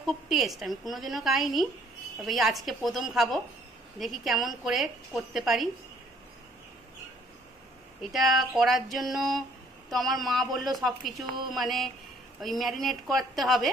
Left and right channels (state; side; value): normal; both; correlation 0.62